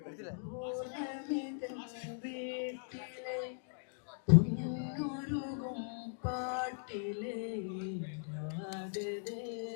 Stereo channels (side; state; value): right; silent; digital silence